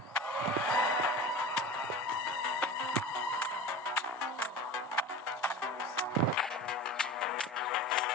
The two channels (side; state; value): both; normal; correlation 0.34